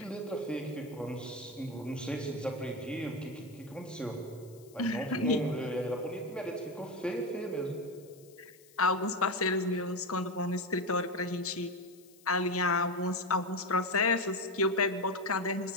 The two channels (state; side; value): noise; left; hiss, 25 dB below the sound